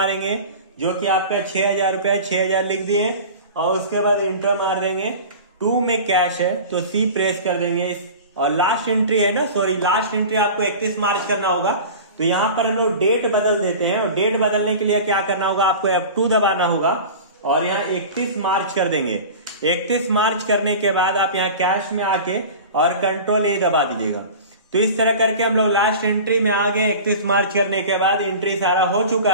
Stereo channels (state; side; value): inverted; both; correlation -0.36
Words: जो कि आपका 6,000 रुपया, 6,000 लिख दिए और उसके बाद इंटर मार देंगे। 2 में कैश है तो C प्रेस कर देंगे। और लास्ट एंट्री है ना, सॉरी लास्ट एंट्री आपको 31 मार्च करना होगा। तो यहाँ पर हम लोग डेट बदल देते हैं और डेट बदलने के लिए क्या करना होगा, आपको F2 दबाना होगा और यहाँ 31 मार्च कर देंगे। 31 मार्च करने के बाद आप यहाँ कैश में आके और कंट्रोल ए दबा दीजिएगा। तो इस तरह करके हम लोग लास्ट एंट्री में आ गए। 31 मार्च करने के बाद एंट्री सारा हो